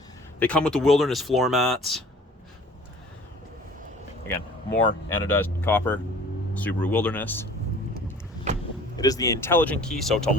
They come with the Wilderness floor mats. Again, more anodized copper, Subaru Wilderness. It is the intelligent key, so to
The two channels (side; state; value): both; normal; correlation 0.48